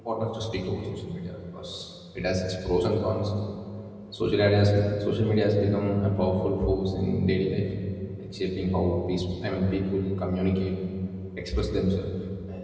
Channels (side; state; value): both; identical; correlation 1.00